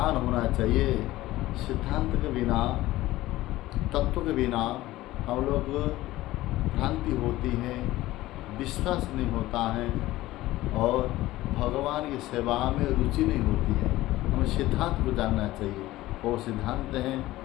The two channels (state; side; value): quieter; right; 16.9 dB